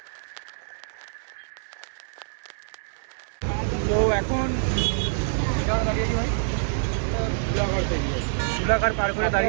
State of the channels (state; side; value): silent; left; digital silence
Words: তো এখন দাঁড়িয়ে আছি ভাই, জুলাঘাট পার করে